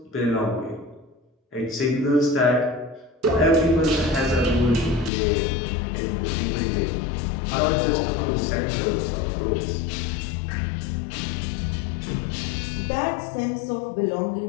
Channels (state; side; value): drops out; right; at 5.1 s